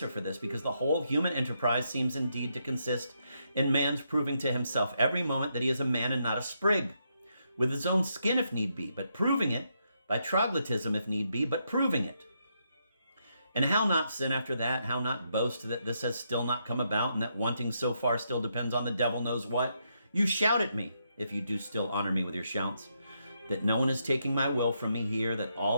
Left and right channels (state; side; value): inverted; both; correlation -0.79